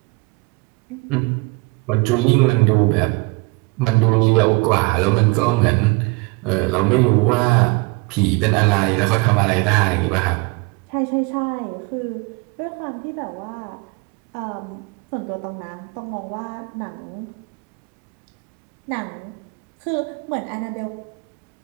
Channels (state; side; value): quieter; left; 27.2 dB